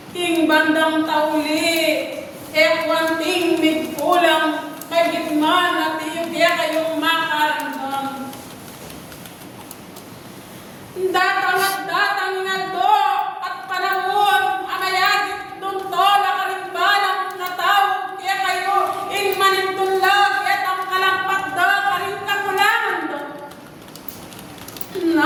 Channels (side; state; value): both; identical; correlation 1.00